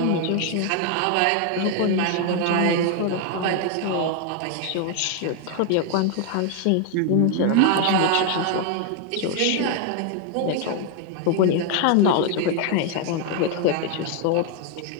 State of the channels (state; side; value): different; both; correlation 0.00